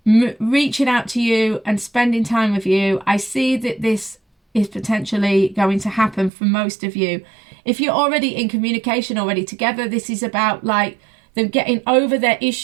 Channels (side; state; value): left; drops out; at 6.3 s